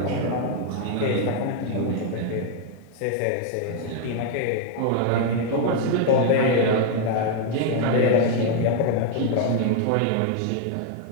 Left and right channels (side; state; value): both; different; correlation 0.00